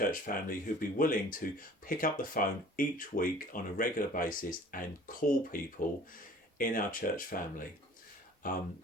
family who'd be willing to pick up the phone each week on a regular basis and call people in our church family,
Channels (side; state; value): both; normal; correlation 0.49